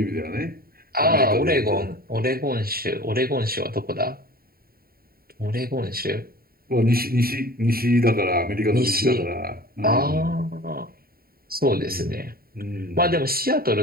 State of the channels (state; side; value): late; left; 0.43 ms